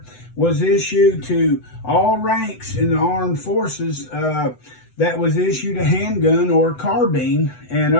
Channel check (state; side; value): late; right; 8.0 ms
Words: was issued to all ranks in the armed forces that was issued a handgun or a carbine, and